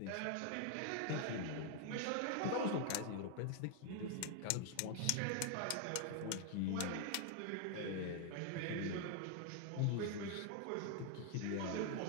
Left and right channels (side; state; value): both; different; correlation 0.01